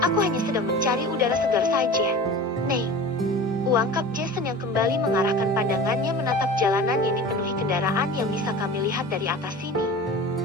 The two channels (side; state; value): both; normal; correlation 0.36